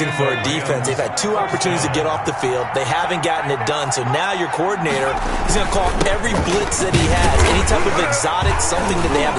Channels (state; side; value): identical; both; correlation 1.00